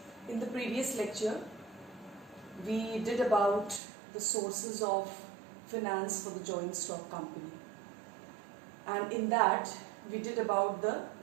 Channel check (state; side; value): drops out; left; at 3.8 s